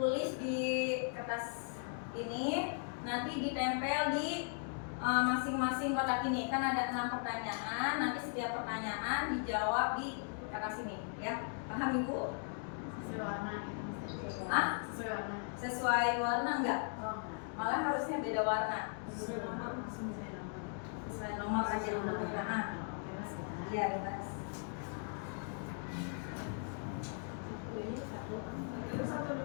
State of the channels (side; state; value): right; silent; 52 dB below the other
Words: di kertas ini, nanti ditempel di masing-masing kotak ini. Kan ada 6 pertanyaan, nanti setiap pertanyaan dijawab di kertas ini ya. Paham Ibu? Sesuai warna gitu. Ah? Sesuai warna. Sesuai warna enggak? Oh, Malah harusnya beda warna. sesuai nomor. Sesuai nomor aja dulu. Nah, iya bebas.